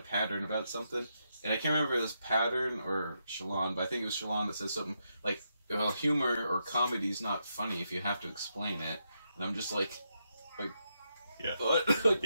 Pattern about something, and I can't remember if it was Pattern or Shallan, but I think it was Shallan that says something like, "Well, humor or comedy is not funny if you have to explain it," and I'm just like. Yeah. Like,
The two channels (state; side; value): inverted; both; correlation -0.82